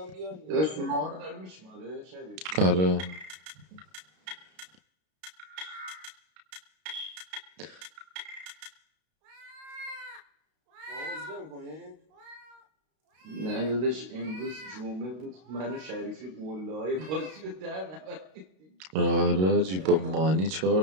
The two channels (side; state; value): left; late; 32 ms